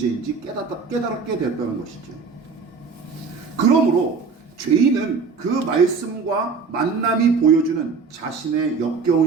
깨닫게 됐다는 것이죠. 그러므로 죄인은 그 말씀과 만남이 보여주는 자신의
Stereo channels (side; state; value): left; quieter; 5.1 dB